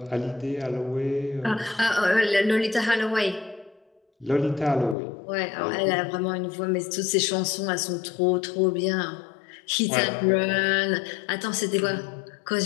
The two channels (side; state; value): right; drops out; at 5.0 s